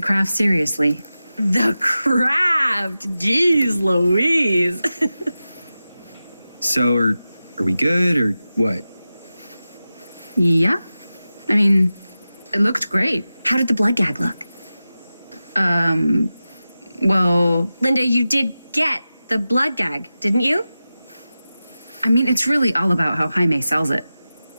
craft seriously. The craft! Jeez Louise! So, are we good, or what? Yeah. I mean, it looked great. How did the blood gag look? Well, Linda, you did get the blood gag, didn't you? I mean, it's really all about how Jaime sells it.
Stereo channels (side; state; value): both; inverted; correlation -0.94